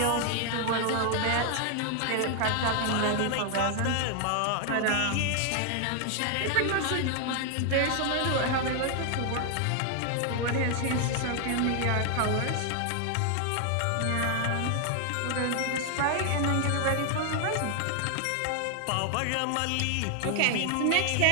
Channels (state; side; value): different; both; correlation 0.00